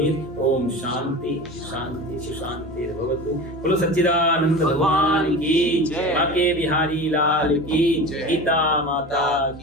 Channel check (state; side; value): normal; both; correlation 0.32